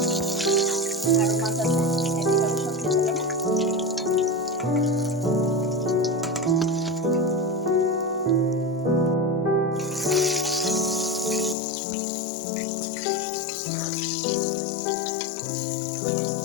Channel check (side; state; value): right; drops out; at 11.6 s